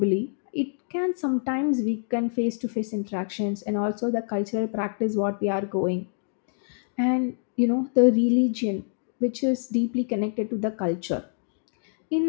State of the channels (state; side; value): silent; right; digital silence